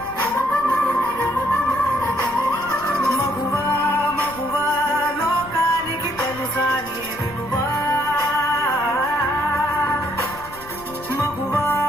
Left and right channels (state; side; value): noise; left; rumble, 20 dB below the sound